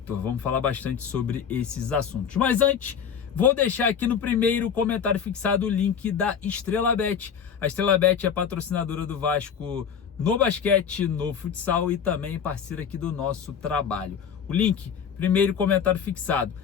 Vamos falar bastante sobre esses assuntos. Mas antes, vou deixar aqui no primeiro comentário fixado o link da Estrela Bet. A Estrela Bet é patrocinadora do Vasco no basquete, no futsal e também parceira aqui do nosso trabalho. O link, primeiro comentário fixado.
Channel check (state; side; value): quieter; right; 7.4 dB